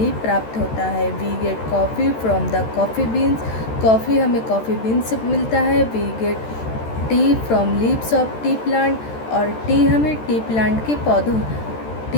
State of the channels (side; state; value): right; late; 13 ms